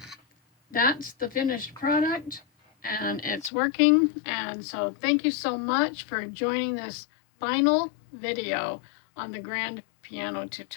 that's the finished product and it's working. And so thank you so much for joining this final video on the grand piano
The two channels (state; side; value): drops out; right; at 3.5 s